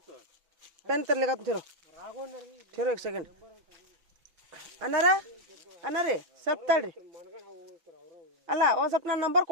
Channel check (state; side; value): late; left; 6.0 ms